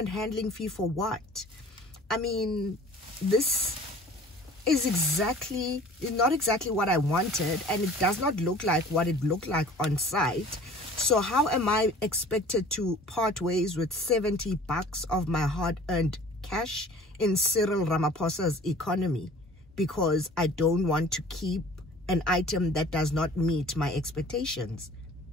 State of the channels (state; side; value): normal; both; correlation 0.47